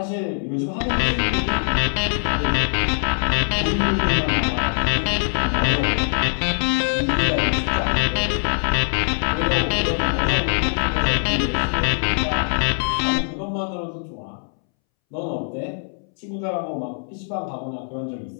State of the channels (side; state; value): right; silent; 64 dB below the other